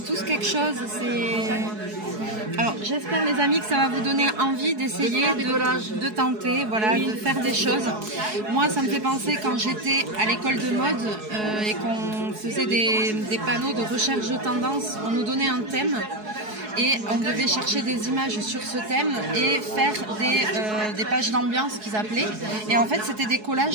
quelque chose. Alors, j'espère les amis que ça va vous donner envie d'essayer, de tenter, voilà, de faire des choses. Moi, ça me fait penser quand j'étais à l'école de mode et qu'on faisait des panneaux de recherche de tendance, on nous donnait un thème. Et on devait chercher des images sur ce thème et faire des pages d'ambiance qu'ils appelaient. Et en fait, c'était des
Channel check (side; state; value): left; late; 4.7 ms